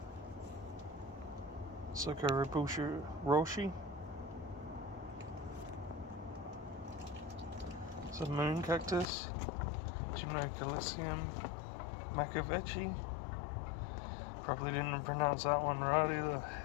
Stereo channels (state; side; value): drops out; right; at 9.1 s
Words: Socoribusha Roshi. It's a moon cactus. Gymnocalicium Macavechi. Probably didn't pronounce that one right either.